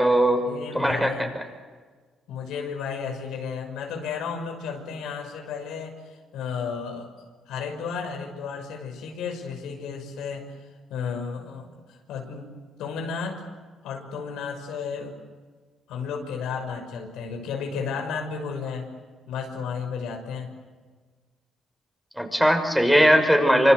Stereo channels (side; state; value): both; normal; correlation 0.86